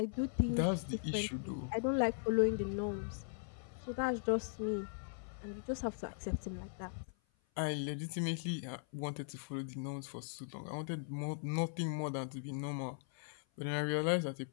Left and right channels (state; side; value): silent; right; 52 dB below the other